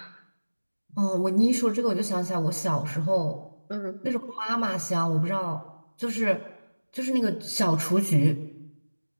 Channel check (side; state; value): both; inverted; correlation -1.00